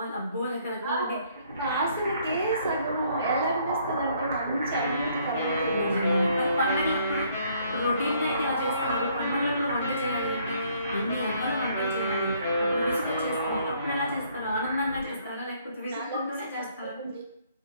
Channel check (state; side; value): inverted; both; correlation -0.65